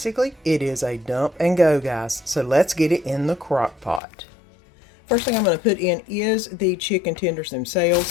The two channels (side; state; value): right; drops out; at 4.0 s